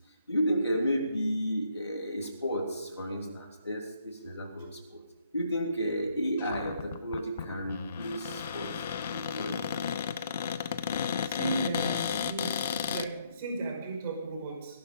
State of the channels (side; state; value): both; inverted; correlation -0.71